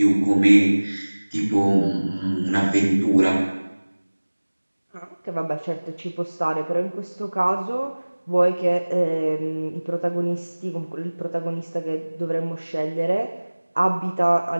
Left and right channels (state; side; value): inverted; both; correlation -1.00